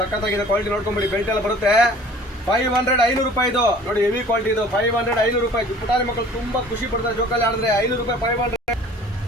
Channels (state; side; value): normal; both; correlation 0.48